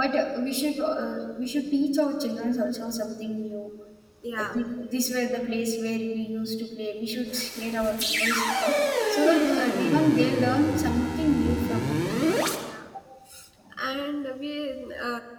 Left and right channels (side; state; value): both; identical; correlation 1.00